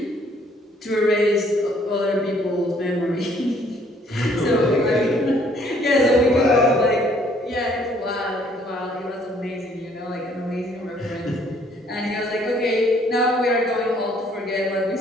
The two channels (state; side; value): normal; both; correlation 0.62